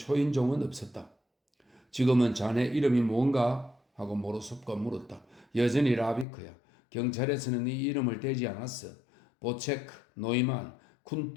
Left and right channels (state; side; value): drops out; right; at 6.2 s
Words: 없었다. 지금은 자네 이름이 뭔가? 하고 모로소프가 물었다. 여전히 라비크야. 경찰에서는 네 이름을 대지 않았어. 보체크, 노이만,